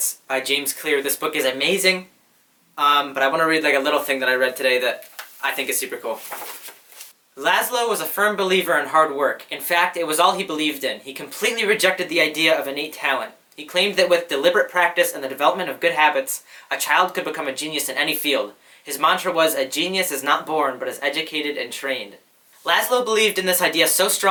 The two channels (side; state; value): both; identical; correlation 1.00